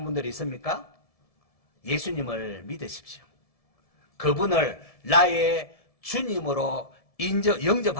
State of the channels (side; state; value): right; late; 1.7 ms